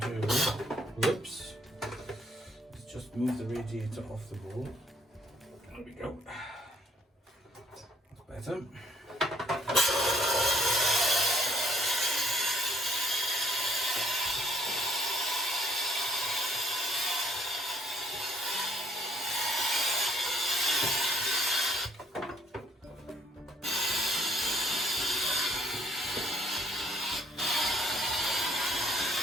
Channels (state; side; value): normal; both; correlation 0.65